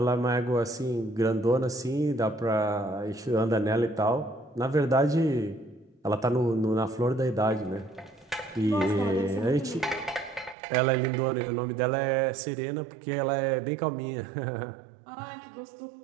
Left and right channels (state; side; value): drops out; left; at 10.6 s